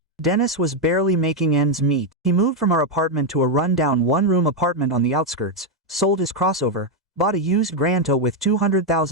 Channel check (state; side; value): normal; both; correlation 0.03